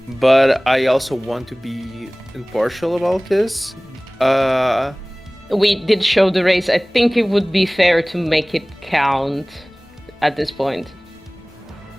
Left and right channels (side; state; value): left; noise; rumble, 30 dB below the sound